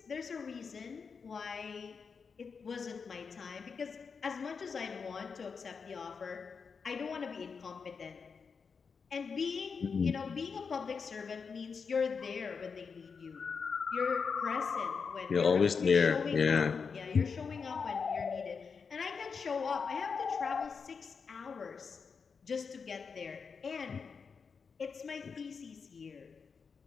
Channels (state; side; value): quieter; right; 5.6 dB